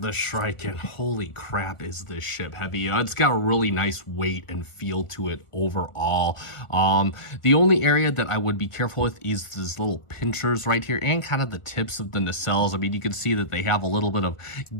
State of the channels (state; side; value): late; right; 1.4 ms